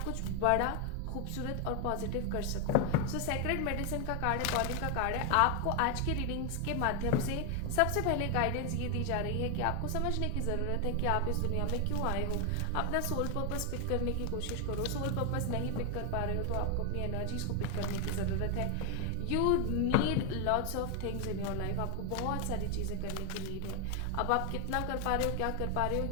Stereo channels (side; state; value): both; different; correlation 0.01